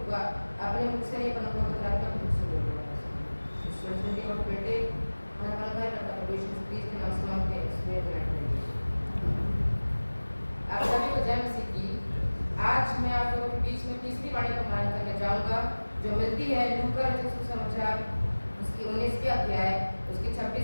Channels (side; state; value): both; inverted; correlation -1.00